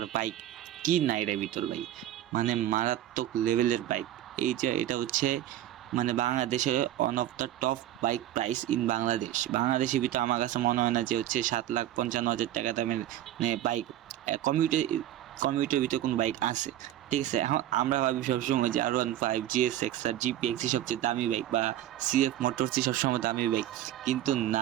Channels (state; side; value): quieter; left; 12.9 dB